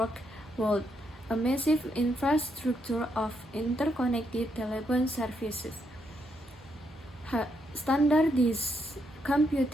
world, a massive infrastructure of interconnected telephone services. Standardized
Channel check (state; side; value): normal; both; correlation 0.78